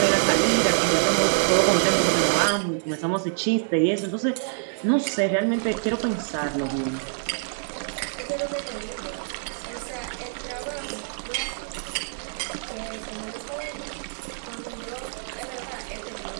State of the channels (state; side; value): silent; left; digital silence